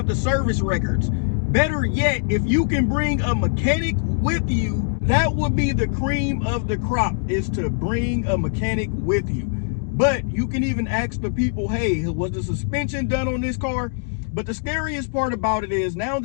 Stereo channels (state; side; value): silent; right; digital silence